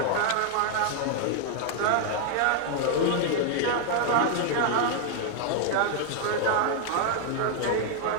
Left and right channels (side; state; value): both; different; correlation 0.00